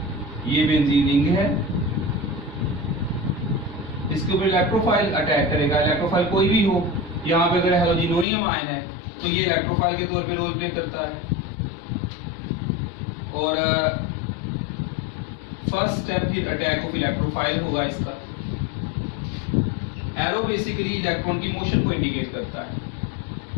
ये बेंजीन रिंग है, इसके ऊपर इलेक्ट्रोफाइल अटैक करेगा। इलेक्ट्रोफाइल कोई भी हो, यहाँ पे अगर हेलोजिनोनियम आयन है तो ये इलेक्ट्रोफाइल के तौर पे रोल प्ले करता है। और फर्स्ट स्टेप फिर अटैक ऑफ इलेक्ट्रोफाइल होगा। इसका एरो बेसिकली इलेक्ट्रॉन की मोशन को इंडिकेट करता है।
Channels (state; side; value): drops out; right; at 8.2 s